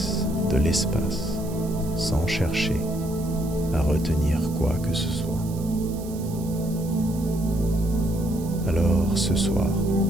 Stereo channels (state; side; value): noise; right; hiss, 18 dB below the sound